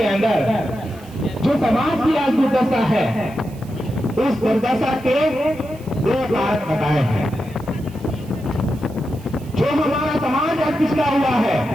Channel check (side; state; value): right; noise; hiss, 24 dB below the sound